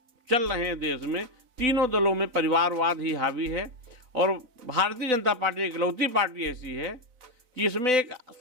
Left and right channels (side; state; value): left; late; 4.0 ms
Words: चल रहे हैं देश में, तीनों दलों में परिवारवाद ही हावी है। और भारतीय जनता पार्टी इकलौती पार्टी ऐसी है कि इसमें एक